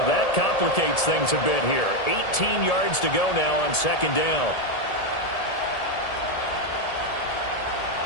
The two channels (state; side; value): late; right; 1.8 ms